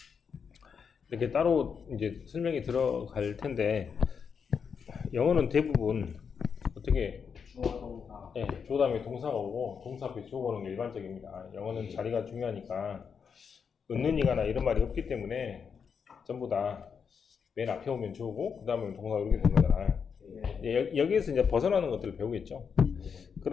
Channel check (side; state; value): right; quieter; 6.4 dB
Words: 이렇게 따로 이제 설명이 들어갈 텐데, 영어는 대부분 어떻게 주어동사. 네, 주어 다음에 동사가 오고 동사 앞에 주어가 오는 게 일반적입니다. 영어는 자리가 중요하니까 은는이가나 이런 말이 없기 때문에 전부 다 맨 앞에 오면 주어고 그 다음에 동사가 이렇게 되는 거잖아요. 여기에서 이제 벗어나는 것들을 배우겠죠.